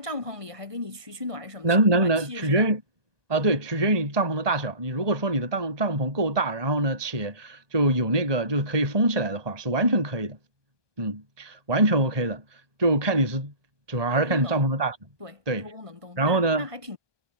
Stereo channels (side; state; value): left; late; 1.2 ms